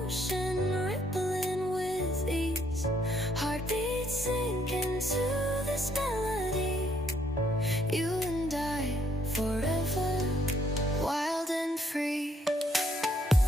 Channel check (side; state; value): both; normal; correlation 0.69